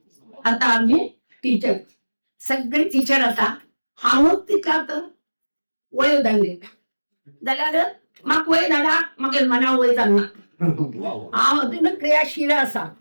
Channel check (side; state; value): both; inverted; correlation -1.00